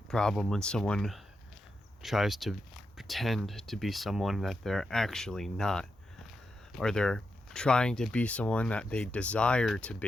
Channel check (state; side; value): normal; both; correlation 0.86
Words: problem when someone tries to pretend to be someone that they're actually not, or they're trying to be someone that they desire to